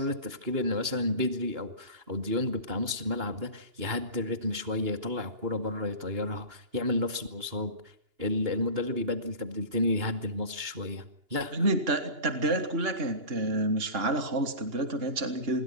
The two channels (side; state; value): left; late; 2.9 ms